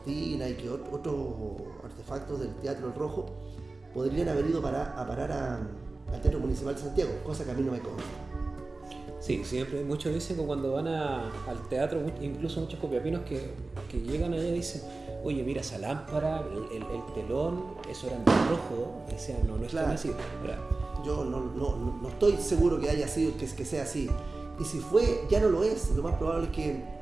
y que otros artefactos del Teatro El Rojo podrían haber ido a parar al Teatro Municipal de Santiago, cosa que a mí no me consta. Sí, siempre muchos dicen que cuando van al teatro, incluso muchos copiapinos que llegan allá dicen: oye, mira esa lámpara, el telón, eso era en rojo, que sea, no es claro. Tan así. Yo no estoy seguro que haya sido, que sea así. Y si fue, ya no lo es. Lo más probable es que,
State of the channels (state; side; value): quieter; left; 3.4 dB